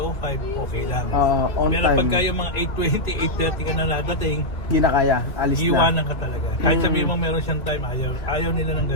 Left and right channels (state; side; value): late; right; 2.1 ms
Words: okay lang. On Pero time. pagka yung mga 8:20, 8:30 ka na nadating, Hindi na kaya. Alis na. iiwanan ka talaga. Kahit sabihin mo meron siyang time, ayaw nila ng